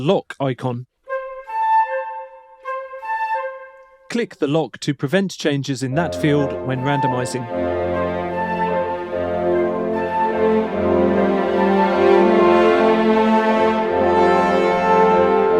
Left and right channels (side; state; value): both; identical; correlation 1.00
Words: icon. Click the lock to prevent changes in that field when randomizing.